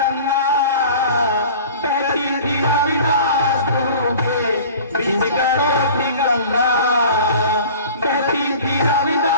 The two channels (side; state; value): both; inverted; correlation -0.42